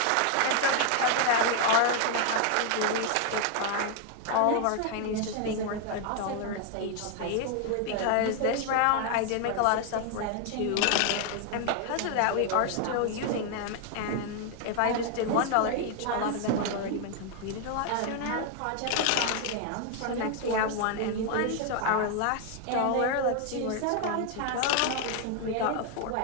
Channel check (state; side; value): different; both; correlation 0.00